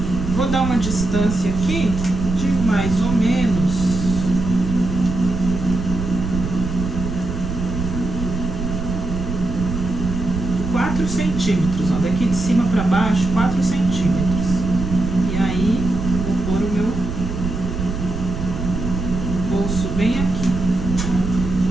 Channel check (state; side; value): noise; right; rumble, 5 dB below the sound